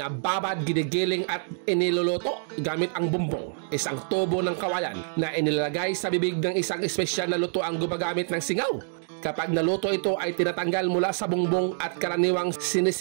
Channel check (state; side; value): silent; left; digital silence